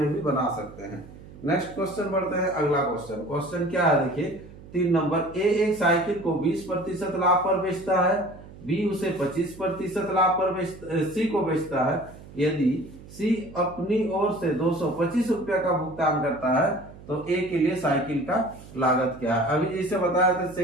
भी बना सकते हैं। नेक्स्ट क्वेश्चन बढ़ते हैं, अगला क्वेश्चन, क्वेश्चन क्या है देखिए 3 नंबर, ए एक साइकिल को 20% लाभ पर बेचता है, बी उसे 25% लाभ पर सी को बेचता है। यदि सी अपनी ओर से 225 रुपया का भुगतान करता है तो ए के लिए साइकिल का लागत क्या है। अभी जैसे बताया था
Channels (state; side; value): noise; right; hum, 18 dB below the sound